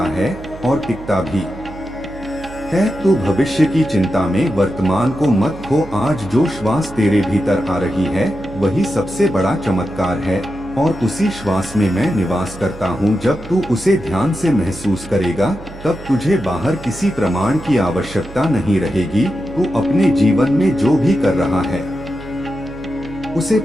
है और टिकता भी है। तू भविष्य की चिंता में वर्तमान को मत खो। आज जो श्वास तेरे भीतर आ रही है वही सबसे बड़ा चमत्कार है, और उसी श्वास में मैं निवास करता हूँ। जब तू उसे ध्यान से महसूस करेगा तब तुझे बाहर किसी प्रमाण की आवश्यकता नहीं रहेगी। तू अपने जीवन में जो भी कर रहा है उसे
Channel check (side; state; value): right; noise; hum, 16 dB below the sound